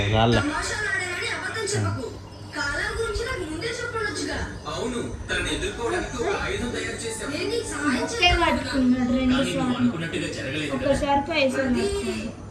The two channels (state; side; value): identical; both; correlation 1.00